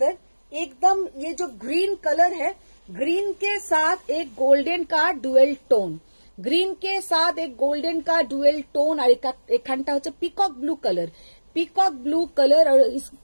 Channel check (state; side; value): inverted; both; correlation -1.00